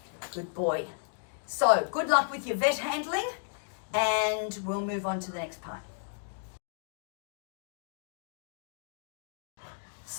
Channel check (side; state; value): right; silent; digital silence